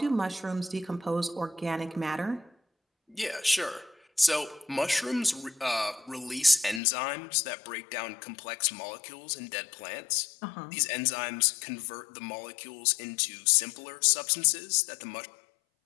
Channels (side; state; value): right; drops out; at 6.8 s